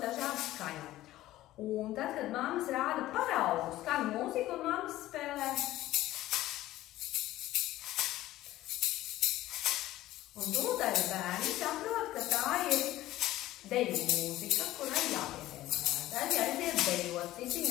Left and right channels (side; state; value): right; quieter; 15.4 dB